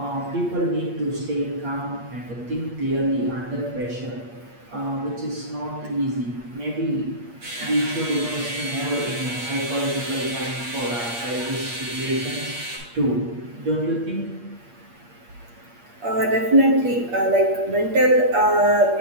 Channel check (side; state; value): left; late; 8.5 ms